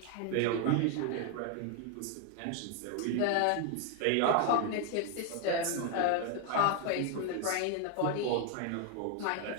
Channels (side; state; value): both; different; correlation 0.01